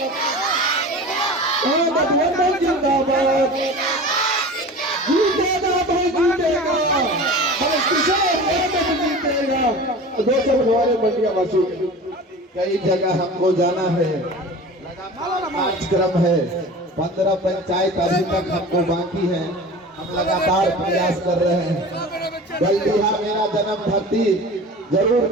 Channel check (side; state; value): both; normal; correlation 0.36